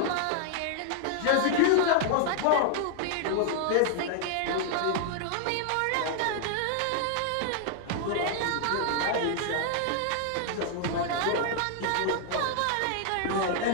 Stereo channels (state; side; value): different; both; correlation 0.00